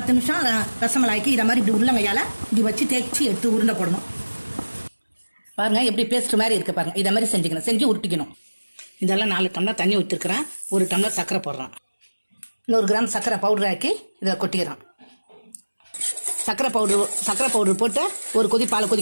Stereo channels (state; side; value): inverted; both; correlation -1.00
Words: நிமிஷம் ரசமலாய்க்கு இதை மாதிரி இப்படி உள்ளங்கையால் இப்படி வச்சு தேய்ச்சி எடுத்து உருண்டை போடணும். பாருங்க எப்படி பேஸ்ட் மாதிரி இருக்கு பாருங்க. இதை மாதிரி செஞ்சுக்கணும், செஞ்சு உருட்டிக்கணும். இதெல்லாம் 4 டம்ளர் தண்ணி ஊற்றிருக்கிறேன். 1 டம்ளர் சர்க்கரை போடுறேன். 100 கிராம் சர்க்கரை பவுடர் ஆக்கி இதில் கொட்டிக்கிறேன். சர்க்கரை பவுடர் போட்டு 1 கொதி பாலை